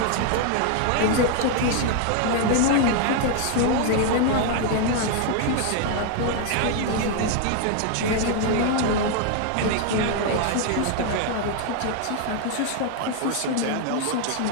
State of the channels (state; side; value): different; both; correlation 0.00